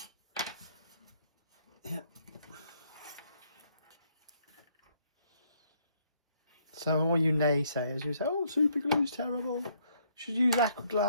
Yeah. So all you naysayers who say, oh, super glue's terrible, should use aqua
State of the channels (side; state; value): both; inverted; correlation -0.69